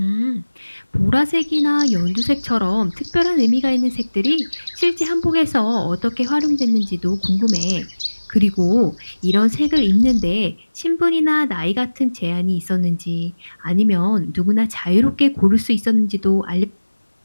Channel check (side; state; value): both; inverted; correlation -1.00